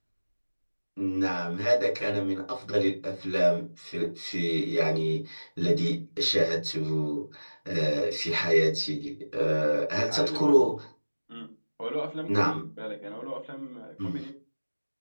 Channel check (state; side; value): inverted; both; correlation -1.00